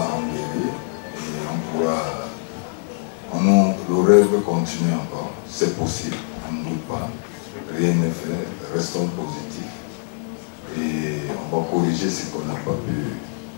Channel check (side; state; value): right; silent; 62 dB below the other